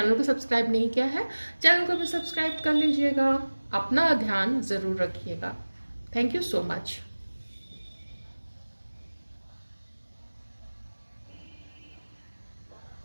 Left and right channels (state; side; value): inverted; both; correlation -1.00